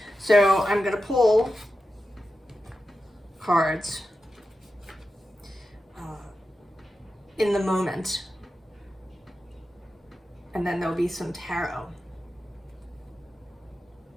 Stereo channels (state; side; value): normal; both; correlation 0.91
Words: So I'm going to pull cards in the moment, and then there'll be some tarot,